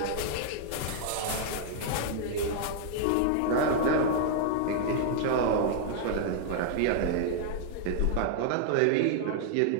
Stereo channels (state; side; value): different; both; correlation -0.01